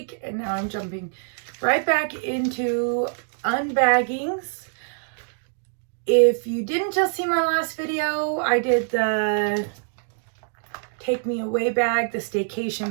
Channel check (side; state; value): left; silent; digital silence